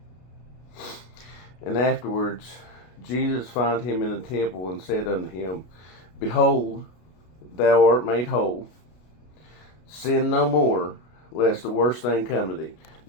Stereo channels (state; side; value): late; right; 33 ms